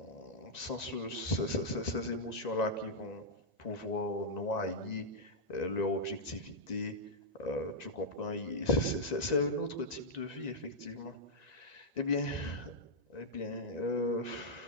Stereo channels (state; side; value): late; right; 1.9 ms